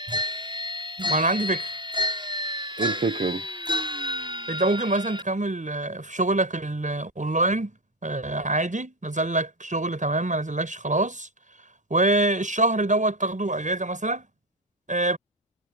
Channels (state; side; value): normal; both; correlation 0.10